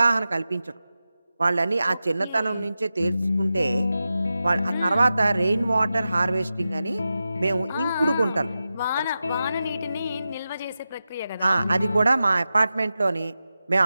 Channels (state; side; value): inverted; both; correlation -0.92